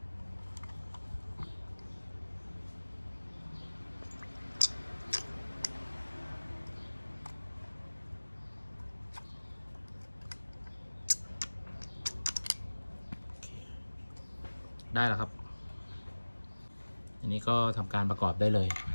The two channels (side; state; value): both; inverted; correlation -1.00